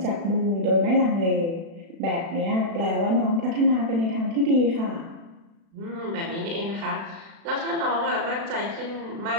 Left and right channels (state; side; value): late; left; 36 ms